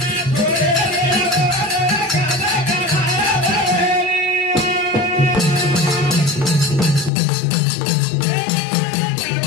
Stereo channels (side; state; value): right; drops out; at 7.1 s